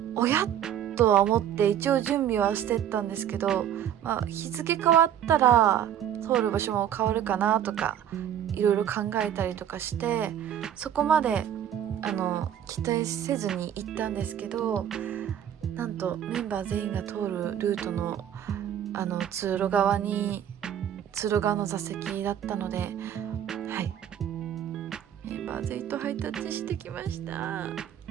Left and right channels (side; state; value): left; quieter; 10.1 dB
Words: おやとは思って一応準備はしてったんですけど、日付変わったら通る場所も変わるかなとかいろいろ考えたりとかして、そこまで期待せずに行ったんですけど、なんとメンバー全員が通るルートの通路側の座席だったので、メンバー全員とハイタッチしてきました。